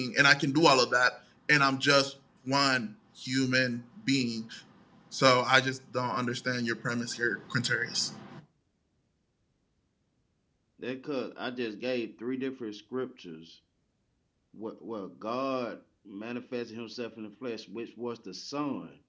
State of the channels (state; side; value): identical; both; correlation 1.00